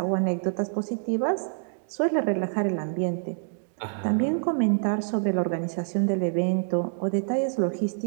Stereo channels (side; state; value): left; silent; digital silence